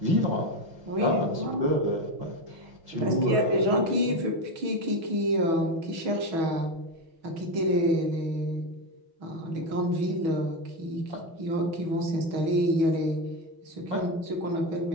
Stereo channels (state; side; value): late; left; 6.2 ms